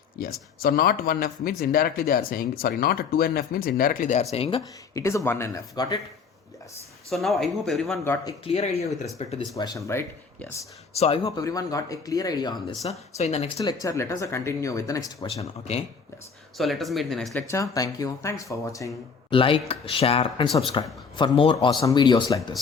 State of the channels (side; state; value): right; quieter; 5.5 dB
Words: Yes. So not 1F means indirectly they are saying, sorry, not 2NF means indirectly they are saying it is a 1NF. Got it? Yes. So now I hope everyone got a clear idea with respect to this question, right? Yes. So I hope everyone got a clear idea on this. So in the next lecture, let us continue with the next question. Okay. Yes. So let us meet in the next lecture. Thank you. Thanks for watching. Like, share and subscribe for more awesome videos like